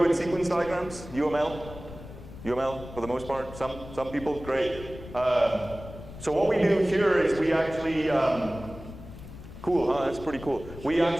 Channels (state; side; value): noise; left; rumble, 14 dB below the sound